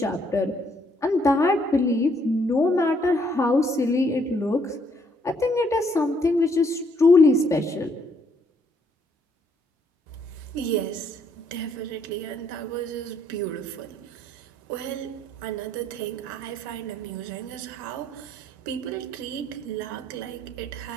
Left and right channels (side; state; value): both; normal; correlation 0.69